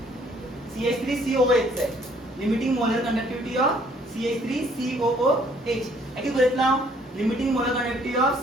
CH3COOH है limiting molar conductivity of CH3COOH ऐसे बोलते ना limiting molar conductivity of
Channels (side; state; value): both; normal; correlation 0.62